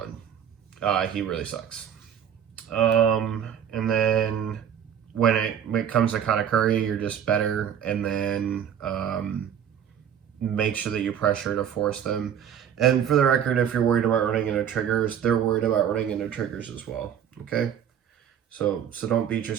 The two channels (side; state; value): left; quieter; 8.9 dB